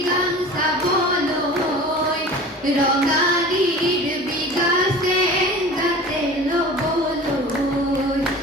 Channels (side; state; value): both; normal; correlation 0.39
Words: গান চাবলৈ ৰঙালীৰ বিগাছে গাতে ল'বলৈ